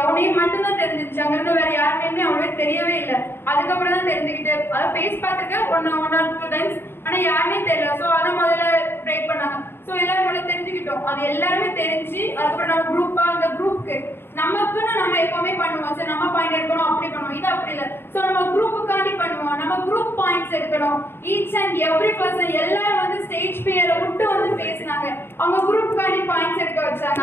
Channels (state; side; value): late; right; 0.11 ms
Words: நேம் மட்டும்தான் தெரிஞ்சிருச்சு. அங்க இருந்து வேற யார் நேமே அவங்களுக்கு தெரியவே இல்லை. அதுக்கப்புறம் தான் தெரிஞ்சுக்கிட்டு அதை ஃபேஸ் பார்த்துக்க ஒன் ஆர் 2 டைம்ஸ், ஆனா யாருமே தெரியல. சோ அதை முதல்ல பிரேக் பண்ணாங்க. சோ எல்லாரும் முதல்ல தெரிஞ்சுக்கிட்டோம். அது எல்லாருமே தெரிஞ்சு அதுக்கப்புறம் நம்ம குரூப்பா அந்த குரூப்புக்கு நமக்குன்னு நம்ம எப்பவுமே பண்ணுவோம். சரி நம்ம பாயிண்ட் எடுக்கணும் அப்படி பண்ணுவோம், இது அப்படி இல்லை. சோ நம்ம குரூப்புக்காண்டி பண்ணுவோம். நம்ம குரூப் பாயிண்ட்ஸ் எடுக்கணும். ஈச் அண்ட் எவ்ரி பர்சன் எல்லாரும் வந்து ஸ்டேஜ் பேரை விட்டு வந்து பேசினாங்க. அவங்க குரூப்புக்காண்டி பாயிண்ட்ஸ் எடுக்க வச்சாங்க.